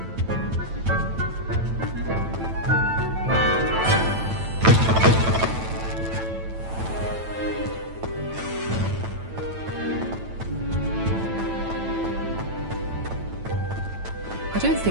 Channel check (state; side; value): late; left; 9.1 ms